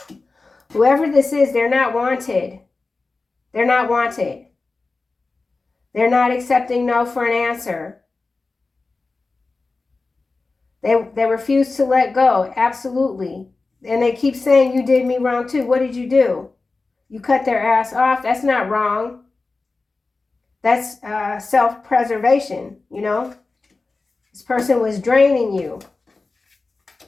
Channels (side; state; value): right; quieter; 3.7 dB